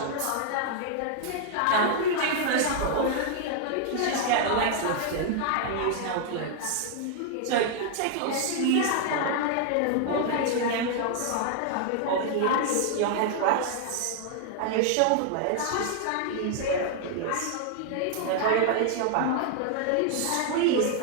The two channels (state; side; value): different; both; correlation 0.00